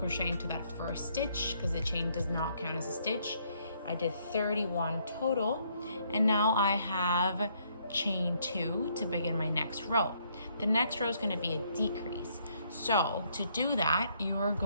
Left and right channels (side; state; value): both; inverted; correlation -0.69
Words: into that first stitch because the chain does not count as a stitch. I did 31 total, and now I have chain 2 to begin my next row. The next row is going to be a decrease. So to do that, you're